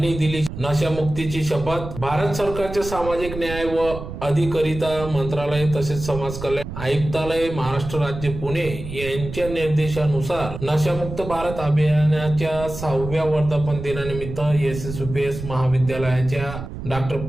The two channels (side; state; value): right; noise; rumble, 9 dB below the sound